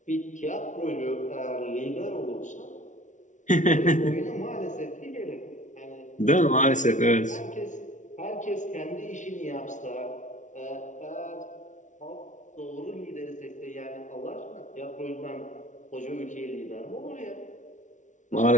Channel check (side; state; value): right; late; 0.36 ms